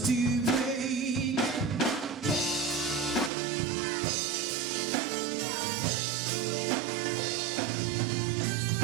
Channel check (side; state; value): left; drops out; at 3.3 s